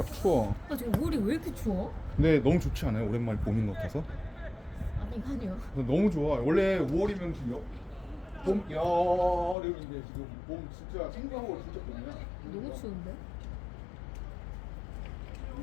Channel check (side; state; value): right; drops out; at 9.6 s